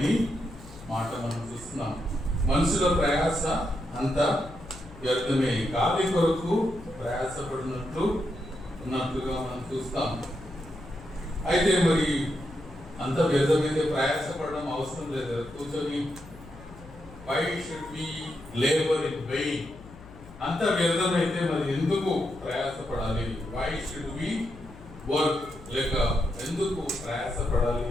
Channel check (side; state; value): left; noise; hum, 19 dB below the sound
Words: మాట మనం చూస్తున్నాం. మనుషుల ప్రయాస అంతా వ్యర్థమే, గాలి కొరకు ప్రయాసపడినట్లుగా మనం చూస్తాం. అయితే మరి అంత వ్యర్థమైతే ప్రయాసపడడం అవసరం లేదు. కూర్చొని why should we labor in vain? అంత వ్యర్థమైతే మరి ఎందుకు ప్రయాసపడాలి? why should we work? లేక ఎందుకు ప్రయాసపడాలి